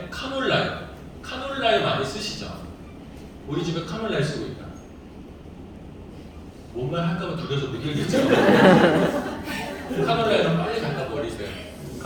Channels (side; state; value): both; identical; correlation 1.00